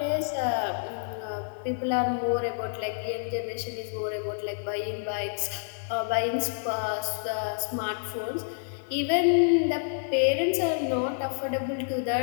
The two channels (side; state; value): right; silent; digital silence